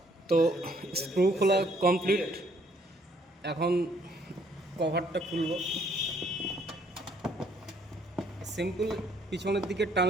তো স্ক্রু খোলা কমপ্লিট। এখন কভারটা খুলব। সিম্পল পিছনের দিকে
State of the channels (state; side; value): normal; both; correlation 0.65